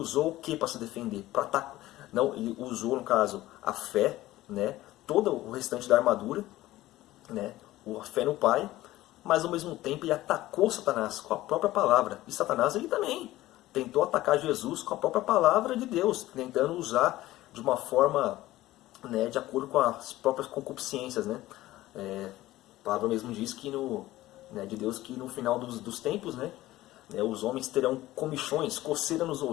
o que para se defender? Não, ele usou, no caso, a fé, né? Todo o restante da armadura, né? A fé no Pai, mas ao mesmo tempo ele atacou Satanás com a própria palavra. E Satanás ele também tentou atacar Jesus com a própria palavra de Deus, tentando usar de uma forma, né, de acordo com as próprias concupiscências, né? A palavra mesmo diz que de Deus que no final dos tempos, né, os homens terão comichões, coceira nos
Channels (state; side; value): quieter; right; 16.3 dB